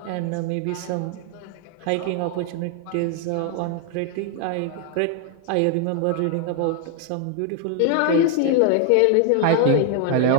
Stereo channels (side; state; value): both; different; correlation 0.00